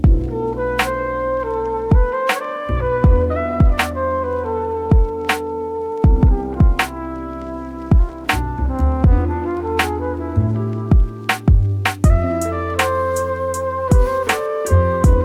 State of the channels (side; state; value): both; identical; correlation 1.00